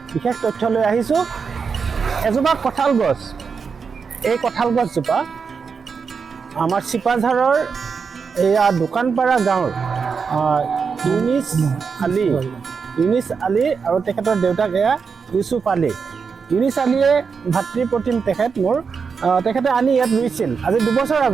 বিশেষ তথ্য লৈ আহিছোঁ। এজোপা কঁঠাল গছ, এই কঁঠাল গছজোপা আমাৰ চিপাঝাৰৰ এয়া দোকানপাৰা গাঁৱৰ ইউনিছ আলী আৰু তেখেতৰ দেউতাক এয়া ইউচুফ আলী। ইউনিছ আলীয়ে ভাতৃপ্ৰতিম তেখেত মোৰ, তেখেতে আনি ইয়াত ৰুইছিল আজি 2 বছৰ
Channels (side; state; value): left; quieter; 5.7 dB